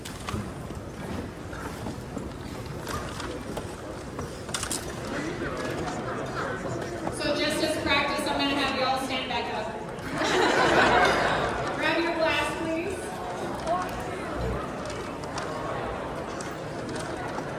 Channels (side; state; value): both; identical; correlation 1.00